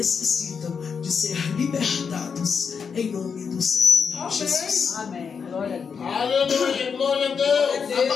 de ser libertados, em nome do Senhor Jesus. Amém. Glória a Deus. Aleluia, glória a Deus.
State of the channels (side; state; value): right; quieter; 6.2 dB